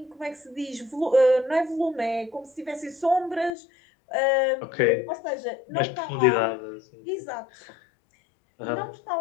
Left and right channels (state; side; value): drops out; right; at 3.5 s